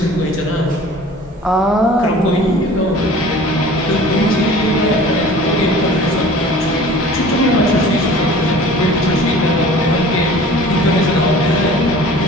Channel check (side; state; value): both; normal; correlation 0.44